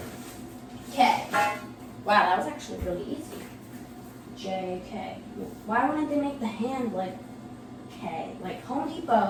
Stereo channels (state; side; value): identical; both; correlation 1.00